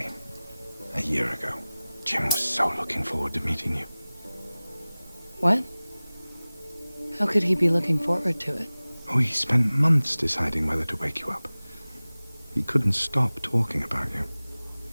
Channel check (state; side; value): inverted; both; correlation -0.99